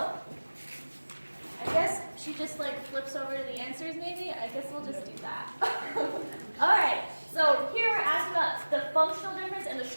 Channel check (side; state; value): both; inverted; correlation -1.00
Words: guess she just like flips over to the answers maybe. I guess we'll just do that. All right, so here we're asking about the functional difference and the